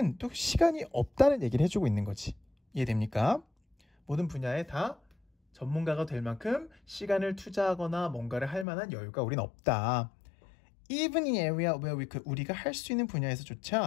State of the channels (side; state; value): right; drops out; at 8.7 s